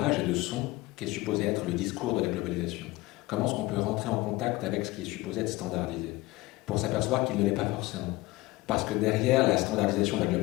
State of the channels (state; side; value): quieter; right; 20.6 dB